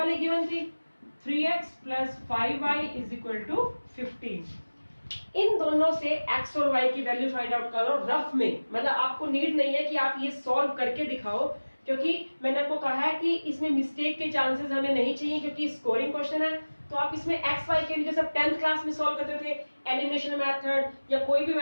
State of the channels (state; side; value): inverted; both; correlation -1.00